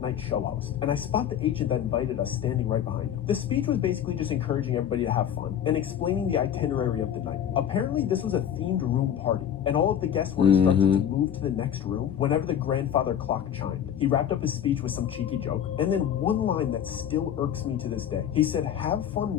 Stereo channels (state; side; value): quieter; right; 9.5 dB